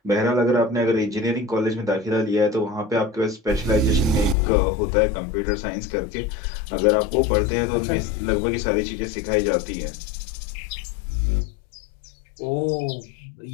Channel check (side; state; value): right; drops out; at 4.4 s